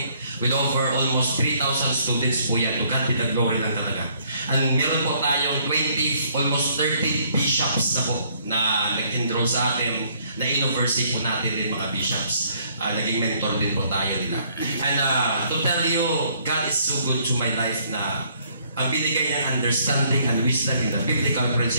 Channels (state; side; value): inverted; both; correlation -0.65